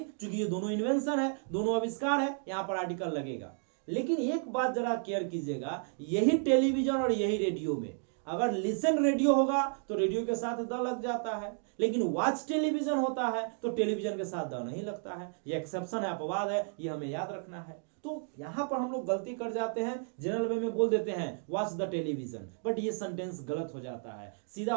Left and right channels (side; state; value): left; silent; 56 dB below the other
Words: ये दोनों इन्वेंशन है, दोनों आविष्कार है, यहां पर आर्टिकल लगेगा। लेकिन एक बात जरा केयर कीजिएगा, यही टेलीविजन और यही रेडियो में अगर लिसन रेडियो होगा तो रेडियो के साथ द लग जाता है, लेकिन वॉच टेलीविजन होता है तो टेलीविजन के साथ द नहीं लगता है। ये एक्सेप्शन है, अपवाद है, ये हमें याद रखना है। तो यहां पर हम लोग गलती कर जाते हैं, जनरल वे में बोल देते हैं वॉच द टेलीविजन, बट ये सेंटेंस गलत हो जाता है, सीधा